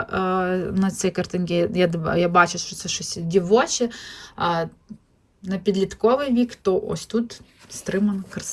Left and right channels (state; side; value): identical; both; correlation 1.00